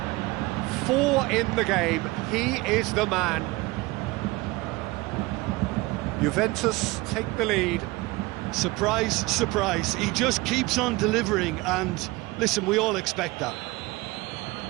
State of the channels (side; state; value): left; quieter; 21.8 dB